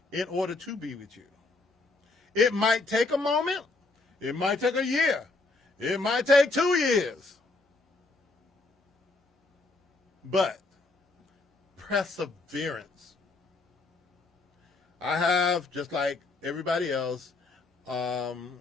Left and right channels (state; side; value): quieter; right; 3.3 dB